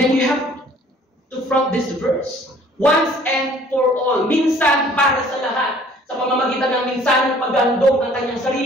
you have to front this verse. Once and for all. Minsan para sa lahat. Sa pamamagitan ng minsan ng paghandog ng kanyang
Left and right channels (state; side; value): normal; both; correlation 0.55